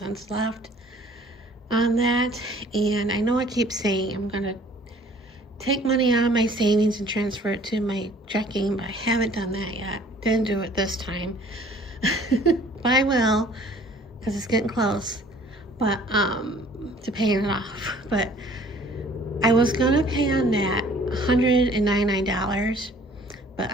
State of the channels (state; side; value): normal; both; correlation 0.54